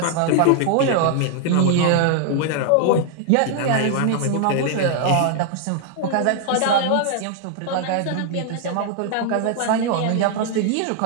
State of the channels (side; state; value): both; different; correlation 0.00